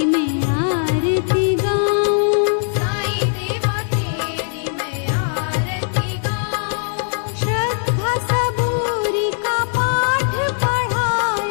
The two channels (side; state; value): right; silent; digital silence